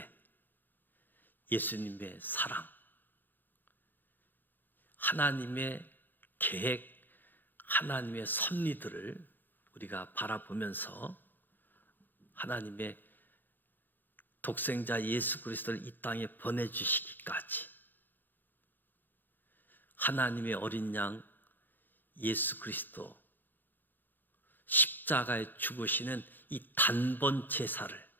예수님의 사랑, 하나님의 계획, 하나님의 섭리들을 우리가 바라보면서 하나님의 독생자 예수 그리스도를 이 땅에 보내주시기까지 하나님의 어린 양 예수 그리스도 십자가에 죽으시는 이 단번 제사를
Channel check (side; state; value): right; late; 0.090 ms